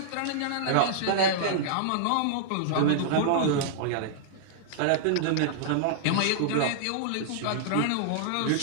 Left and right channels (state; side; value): different; both; correlation -0.02